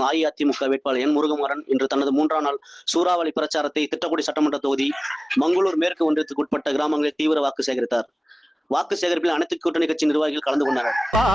அஇஅதிமுக வேட்பாளர் என் முருகமாறன் இன்று தனது 3ஆம் நாள் சூறாவளி பிரச்சாரத்தை திட்டக்குடி சட்டமன்ற தொகுதி மங்களூர் மேற்கு ஒன்றியத்துக்கு உட்பட்ட கிராமங்களில் தீவிர வாக்கு சேகரித்தார். வாக்கு சேகரிப்பில் அனைத்து கூட்டணி கட்சி நிர்வாகிகள் கலந்து கொண்டனர்.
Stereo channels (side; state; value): both; normal; correlation 0.98